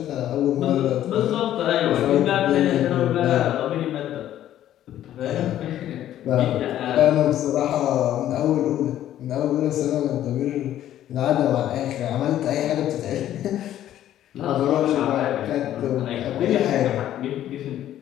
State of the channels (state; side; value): quieter; right; 12.1 dB